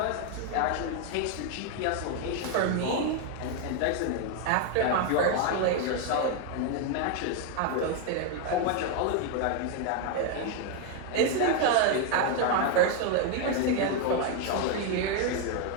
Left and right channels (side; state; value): both; different; correlation 0.01